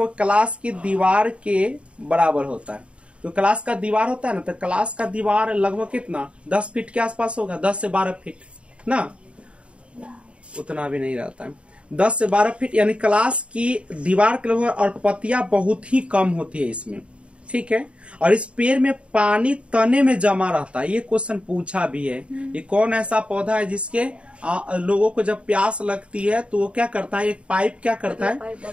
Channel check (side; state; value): left; late; 0.060 ms